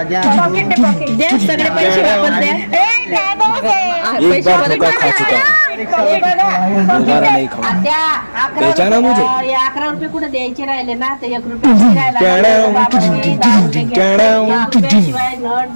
दे सगळे पैसे वापस द्या. बेचाना मुझे 11 रुपये कुठे द्यायचे राहिले ना ते 1 रुपये शिवाय नट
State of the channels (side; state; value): both; inverted; correlation -1.00